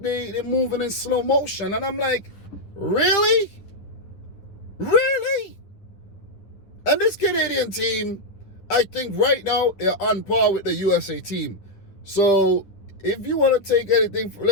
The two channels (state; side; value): late; right; 10 ms